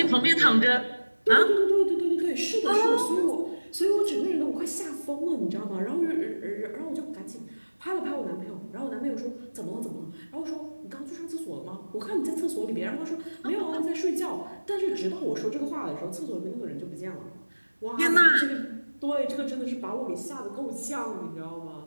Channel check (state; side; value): inverted; both; correlation -1.00